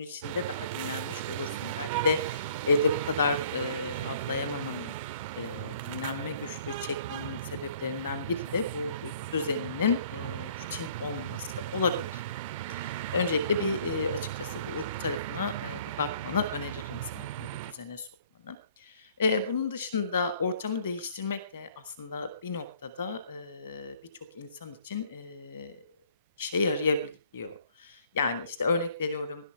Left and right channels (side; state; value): both; inverted; correlation -0.57